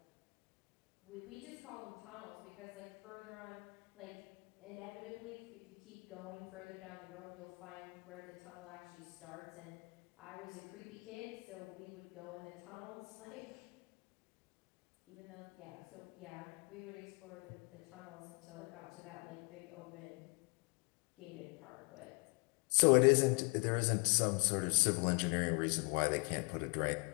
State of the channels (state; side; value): quieter; right; 31.8 dB